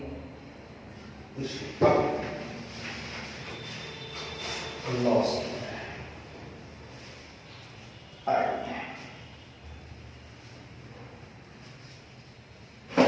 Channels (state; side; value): identical; both; correlation 1.00